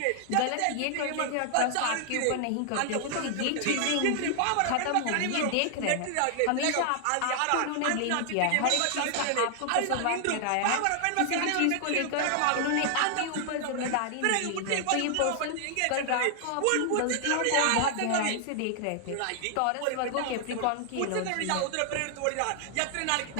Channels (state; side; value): different; both; correlation 0.00